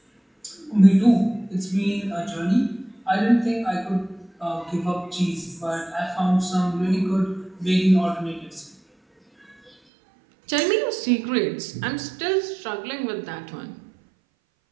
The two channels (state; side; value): drops out; left; at 9.7 s